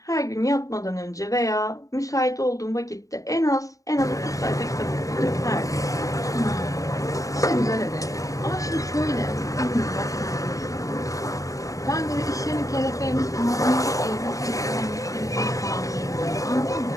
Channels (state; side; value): late; right; 0.16 ms